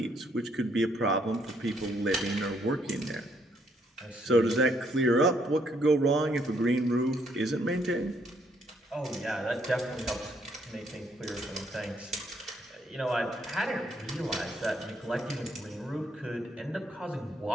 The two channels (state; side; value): normal; both; correlation 0.71